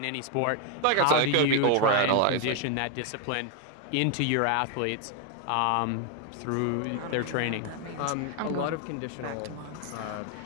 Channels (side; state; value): both; different; correlation 0.01